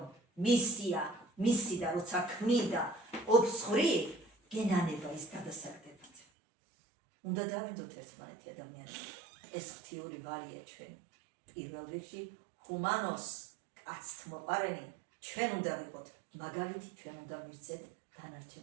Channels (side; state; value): left; drops out; at 6.2 s